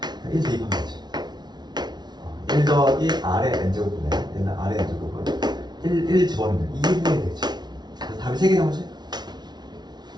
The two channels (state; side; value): late; left; 0.20 ms